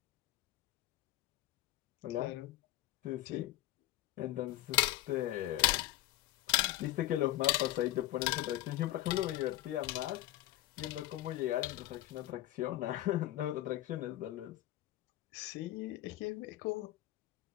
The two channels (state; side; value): quieter; right; 15.6 dB